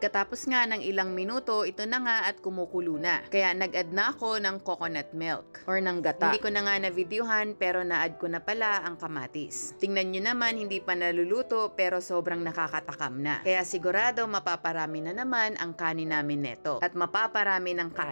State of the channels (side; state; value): both; inverted; correlation -1.00